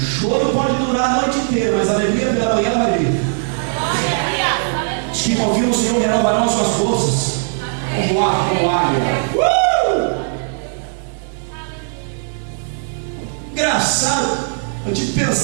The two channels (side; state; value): left; silent; digital silence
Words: pode durar a noite inteira, mas a alegria pela manhã ela vai vir. Se confia no Senhor, renovarão as suas forças. Vamos lá, como águia. Engraçado, eu estive